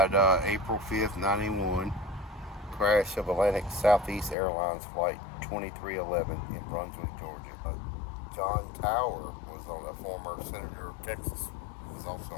April 5th, 91. Crash of Atlantic Southeast Airlines Flight 2311 in Brunswick, Georgia. John Tower was on a former senator of Texas. Was also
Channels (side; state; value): right; drops out; at 4.4 s